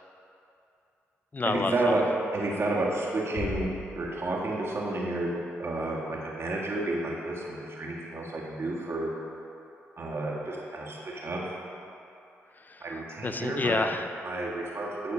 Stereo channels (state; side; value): normal; both; correlation 0.75